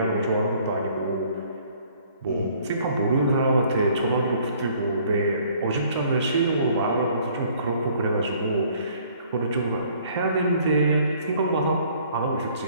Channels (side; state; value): both; inverted; correlation -0.59